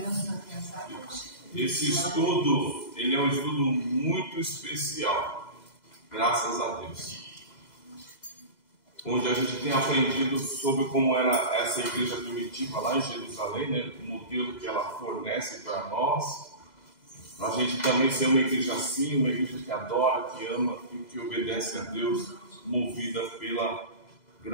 Esse estudo, ele é um estudo muito especial, graças a Deus, onde a gente tem aprendido sobre como era essa igreja primitiva lá em Jerusalém, né? O modelo que ela fornece para nós, para a gente também ser uma igreja assim, uma igreja que adora, que ama e que obedece a Deus, movida pela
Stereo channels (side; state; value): right; late; 2.0 ms